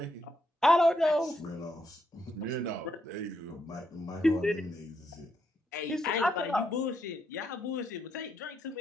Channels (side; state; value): both; normal; correlation 0.78